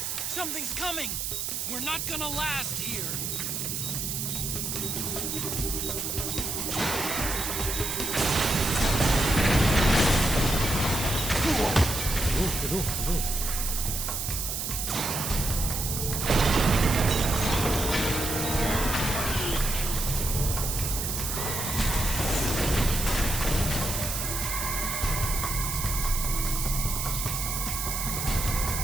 Something's coming. We're not gonna last here. Aduh.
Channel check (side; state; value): right; noise; hiss, 2 dB below the sound